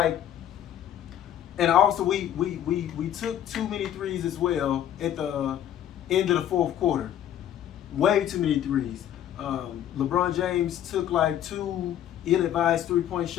and also we took too many threes as well at the end of the fourth quarter. Way too many threes. LeBron James took like 2 ill-advised 3-point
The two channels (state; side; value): quieter; right; 10.9 dB